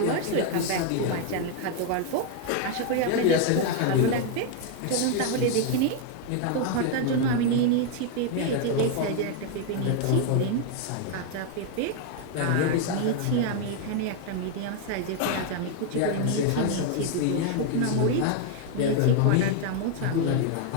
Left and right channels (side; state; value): both; different; correlation 0.00